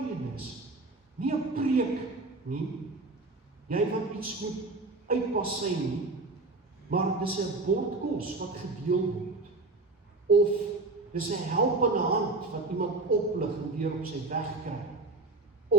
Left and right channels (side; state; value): left; quieter; 3.3 dB